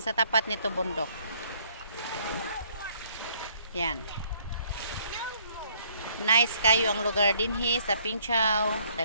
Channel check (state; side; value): inverted; both; correlation -0.64